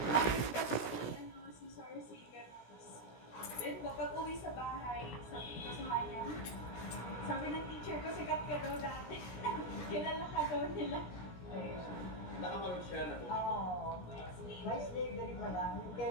si Sarsi, gano'n. Then, kapag uwi sa bahay, sabi ko sa kanya, sabi ng teacher ko, sikat ka daw dati. Kilala ka daw nila. Ayun. Nakamaroon siya na Oo. May slavery pa lang. Yung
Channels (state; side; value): late; right; 17 ms